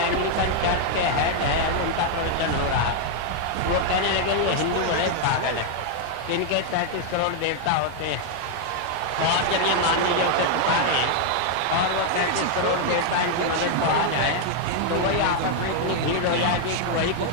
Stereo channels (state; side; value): different; both; correlation 0.00